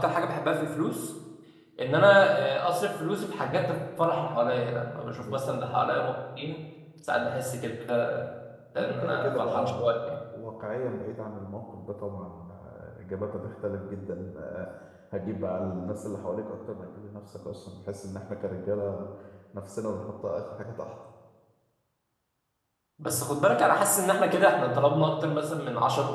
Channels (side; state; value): both; identical; correlation 1.00